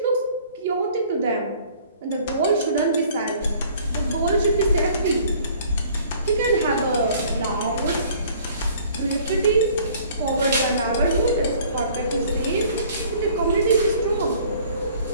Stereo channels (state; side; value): inverted; both; correlation -0.54